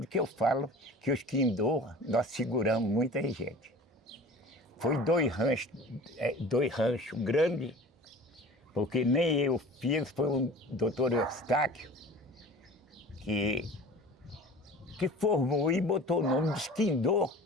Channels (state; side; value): normal; both; correlation 0.41